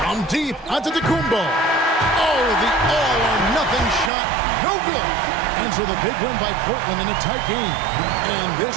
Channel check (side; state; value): left; drops out; at 4.1 s